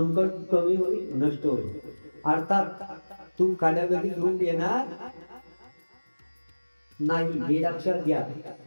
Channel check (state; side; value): inverted; both; correlation -1.00